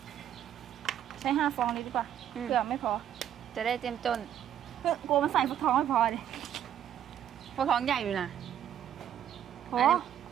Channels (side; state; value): left; quieter; 10.2 dB